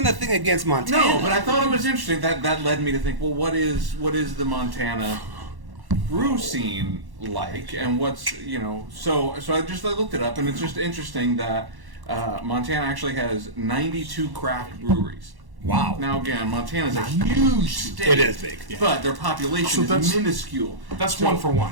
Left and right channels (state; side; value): late; left; 1.1 ms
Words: a thing against Montana. no, but I thought it was interesting. That led me to think, well, what is the Montana brew scene like, and what's So I looked it up, and it's just interesting that Montana actually has 92 craft breweries. Wow. Now again, Montana's a huge state. It is big. Yeah. But their population is minuscule. That's one for